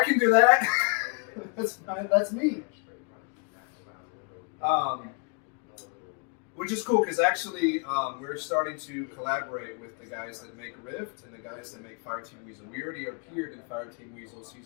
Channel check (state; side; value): quieter; right; 34.3 dB